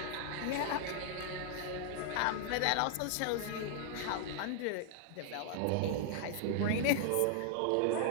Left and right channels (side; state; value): both; different; correlation -0.01